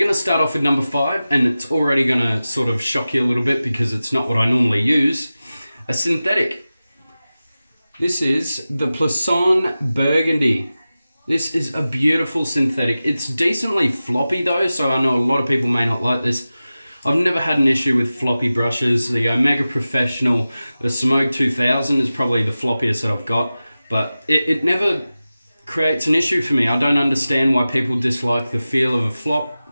to start off with number 5, and it's already going to sort of shock you a little bit because it's not what I normally use. A synthetic. This is the On Burgundy. This is a beautiful synthetic. It's decently floppy though, so I know a lot of people may not like this. I've never had an issue with floppy brushes. The Omega Professional, the Smoke 2000 is probably the floppiest that I've got, but it never creates an issue for me. I don't understand why people dislike the feel of a flop.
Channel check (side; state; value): both; inverted; correlation -0.95